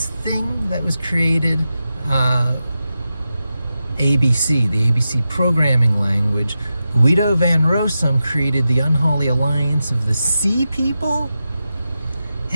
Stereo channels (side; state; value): both; inverted; correlation -0.90